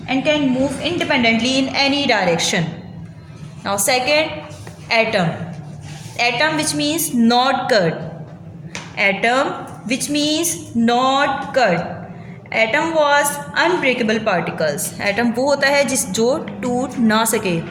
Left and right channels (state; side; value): identical; both; correlation 1.00